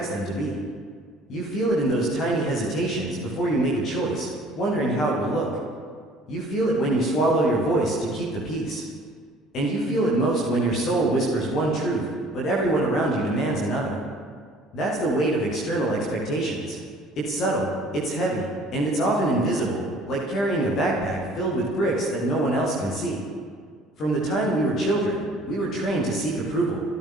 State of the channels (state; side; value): normal; both; correlation 0.53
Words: them to be. You feel it in those tiny hesitations before you make a choice, wondering how it will look. You feel it when you swallow your voice to keep the peace. And you feel it most when your soul whispers one truth, but everyone around you demands another. That's the weight of external expectations. It's subtle, it's heavy, and it's often invisible, like carrying a backpack filled with bricks that no one else can see. From the time we were children, we were trained to seek